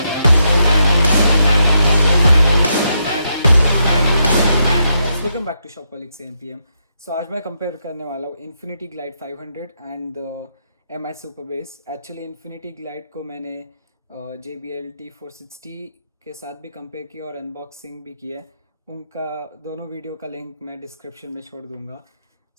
Welcome back to Shopaholics MPM. सो आज मैं कंपेयर करने वाला हूँ Infinity Glide 500 and M I super bass. Actually Infinity Glide को मैंने JBL T460 के साथ भी कंपेयर किया और अनबॉक्सिंग भी किया है। उनका दोनों वीडियो का लिंक मैं डिस्क्रिप्शन में छोड़ दूंगा।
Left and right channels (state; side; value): inverted; both; correlation -0.81